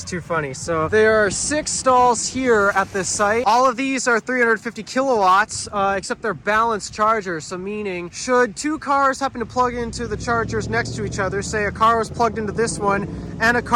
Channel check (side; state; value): both; identical; correlation 1.00